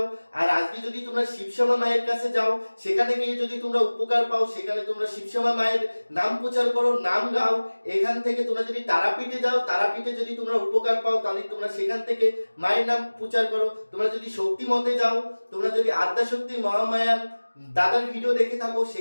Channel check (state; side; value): inverted; both; correlation -1.00